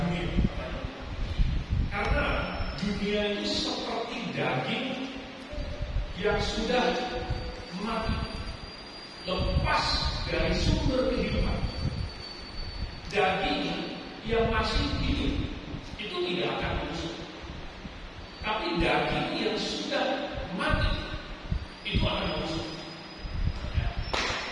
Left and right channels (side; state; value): both; identical; correlation 1.00